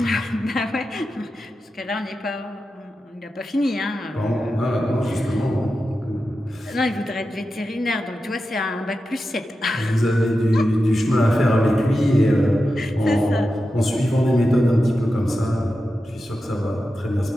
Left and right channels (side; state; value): both; normal; correlation 0.91